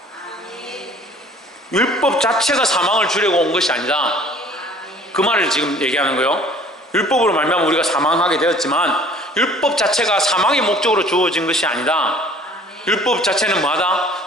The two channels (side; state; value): both; normal; correlation 0.51